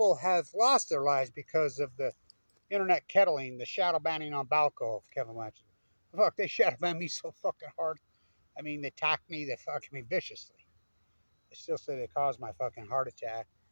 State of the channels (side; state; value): both; inverted; correlation -1.00